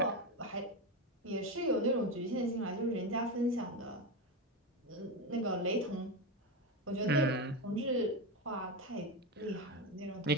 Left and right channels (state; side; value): normal; both; correlation 0.15